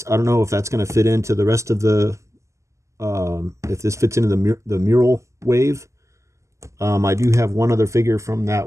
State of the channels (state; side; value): late; left; 0.14 ms